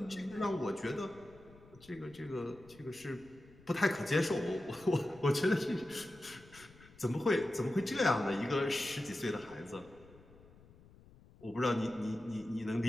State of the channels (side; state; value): left; noise; rumble, 23 dB below the sound